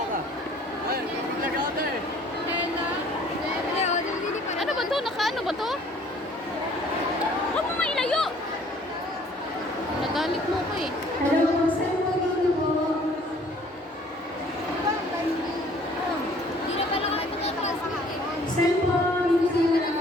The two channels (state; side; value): normal; both; correlation 0.56